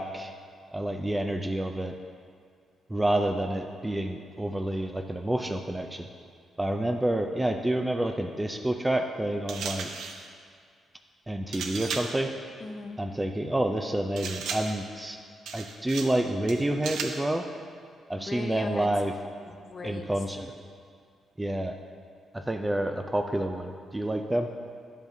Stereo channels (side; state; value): both; normal; correlation 0.93